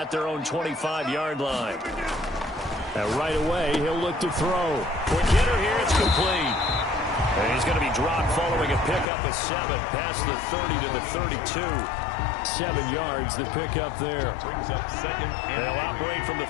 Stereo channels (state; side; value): drops out; right; at 9.1 s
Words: their own 25-yard line. And right away, he'll look to throw. Quick hitter here, it's complete. And he's going to be dropped following a pickup of 7 past the 30 to the 32. 7 yards, the pickup there. Brings up 2nd and They'll operate from the